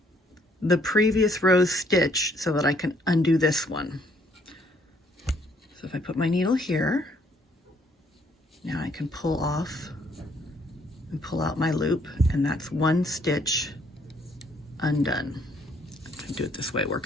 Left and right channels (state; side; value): normal; both; correlation 0.66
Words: the previous row's stitch so that I can undo this one. So if I put my needle here, now I can pull off and pull out my loop, and that's one stitch undone. I do it this way, it